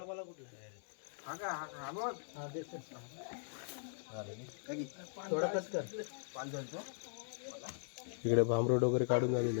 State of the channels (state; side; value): silent; right; digital silence